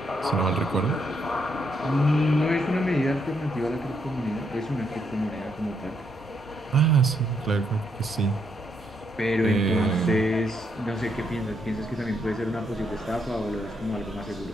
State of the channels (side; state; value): both; normal; correlation 0.76